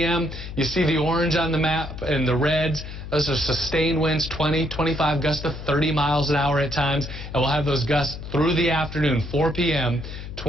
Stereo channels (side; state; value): left; noise; hum, 10 dB below the sound